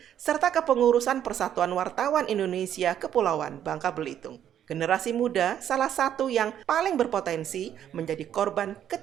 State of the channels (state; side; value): quieter; left; 10.1 dB